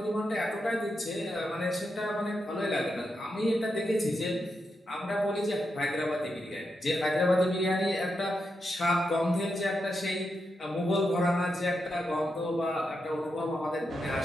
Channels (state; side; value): normal; both; correlation 0.85